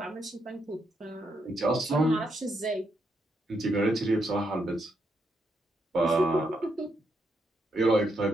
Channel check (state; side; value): normal; both; correlation 0.79